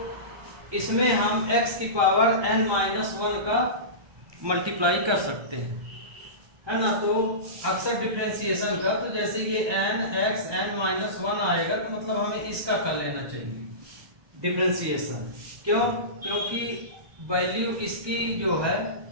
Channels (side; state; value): left; late; 1.2 ms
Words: इसमें हम x की पावर n-1 का मल्टीप्लाई कर सकते हैं, है ना। तो अक्सर डिफरेंशिएशन का, तो जैसे ये x n-1 आएगा तो मतलब हमें इसका कर लेना चाहिए डिफरेंशिएशन। क्यों? क्योंकि वैल्यू इसकी जो है,